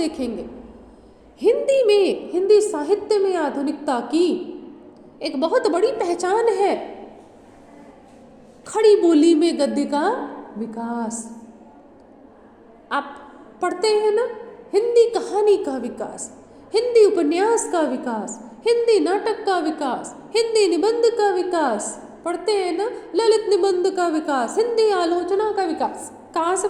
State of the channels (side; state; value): both; identical; correlation 1.00